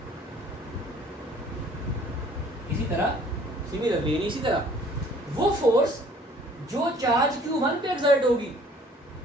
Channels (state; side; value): normal; both; correlation 0.55